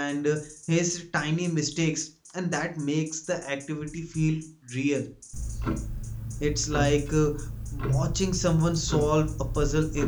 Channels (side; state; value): both; identical; correlation 1.00